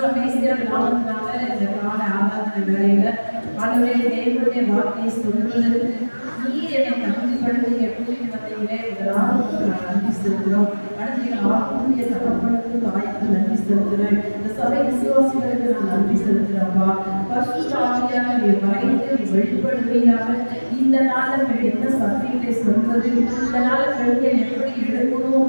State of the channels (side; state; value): both; inverted; correlation -1.00